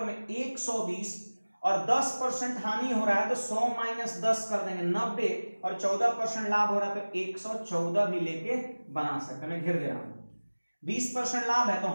में 120 और 10% हानि हो रहा है तो 100 माइनस 10 कर देंगे 90, और 14% लाभ हो रहा है तो 114 भी लेके बना सकते हैं। मैं घेर दे रहा हूं, 20% लाभ है तो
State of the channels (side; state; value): both; inverted; correlation -1.00